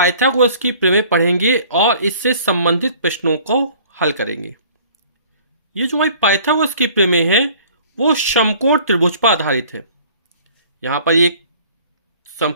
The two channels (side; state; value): both; inverted; correlation -0.51